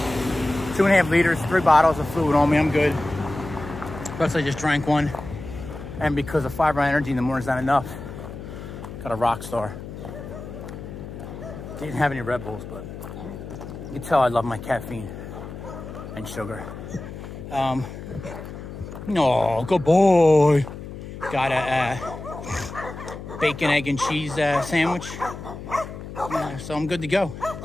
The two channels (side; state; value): left; noise; hum, 11 dB below the sound